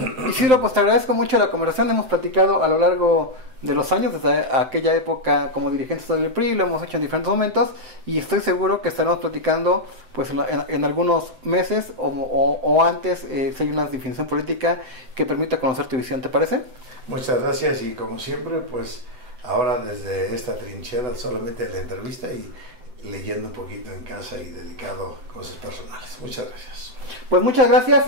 Isidro, pues te agradezco mucho la conversación. Hemos platicado a lo largo de los años, desde aquella época como dirigentes del PRI, lo hemos hecho en diferentes momentos, y estoy seguro que estaremos platicando pues en algunos meses o antes, si hay una definición política que permita conocer tu visión. ¿Te parece? Muchas gracias, y como siempre, pues ahora desde esta trinchera solamente la entrevista y leyendo un poquito en casa y dedicado a cosas personales. Muchas gracias. Pues muchas gracias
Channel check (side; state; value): left; late; 7.7 ms